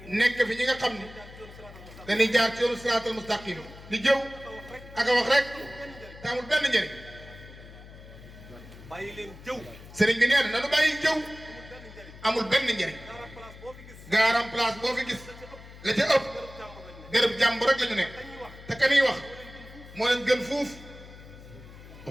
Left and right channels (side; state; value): left; noise; hum, 17 dB below the sound